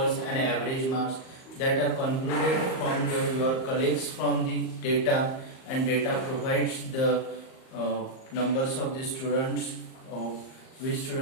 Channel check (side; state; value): right; late; 38 ms